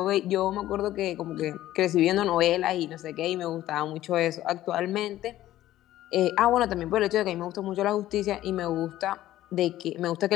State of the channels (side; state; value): right; quieter; 14.2 dB